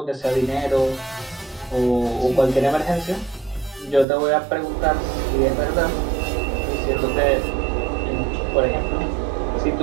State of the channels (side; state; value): left; drops out; at 4.0 s